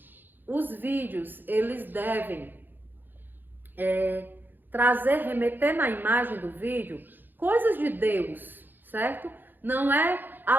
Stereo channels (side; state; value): left; late; 0.091 ms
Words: os vídeos, eles devem remeter na imagem do vídeo coisas de Deus, certo? Não é